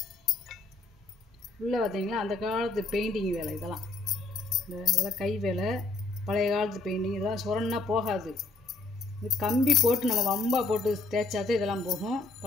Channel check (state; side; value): quieter; right; 3.5 dB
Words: உள்ளே பார்த்தீங்கன்னா அந்த காலத்து பெயிண்டிங் வேலை இதெல்லாம். இதெல்லாம் கை வேலை, பழைய காலத்து பெயிண்டிங். இதெல்லாம் சுரன்னா போகாது. இது கம்பி போட்டு நம்ம வம்பா போட்டு தேய்ச்சாதான் இதெல்லாம் போகும்.